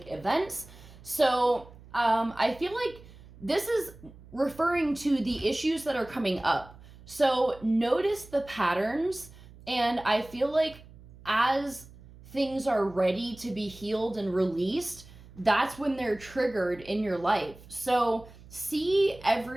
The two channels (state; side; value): noise; right; hum, 21 dB below the sound